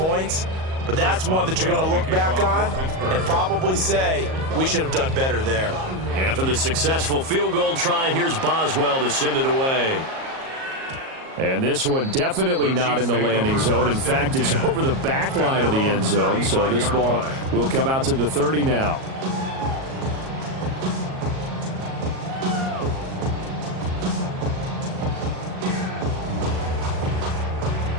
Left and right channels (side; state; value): left; late; 38 ms